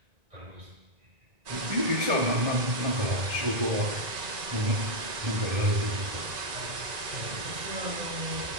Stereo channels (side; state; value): left; late; 1.9 ms